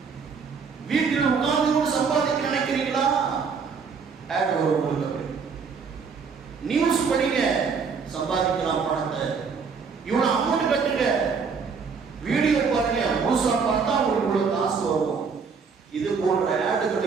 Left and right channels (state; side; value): quieter; left; 5.6 dB